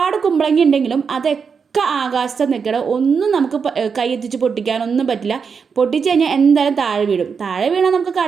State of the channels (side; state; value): left; quieter; 5.9 dB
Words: കുമ്പളങ്ങ ഉണ്ടെങ്കിലും അതൊക്കെ ആകാശത്ത് നിൽക്കണം, ഒന്നും നമുക്ക് കൈയെത്തിച്ച് പൊട്ടിക്കാനൊന്നും പറ്റില്ല. പൊട്ടിച്ച് കഴിഞ്ഞാൽ എന്തായാലും താഴെ വീഴും. താഴെ വീണാൽ നമുക്ക്